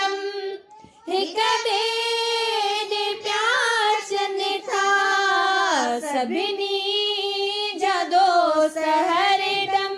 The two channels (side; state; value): both; identical; correlation 1.00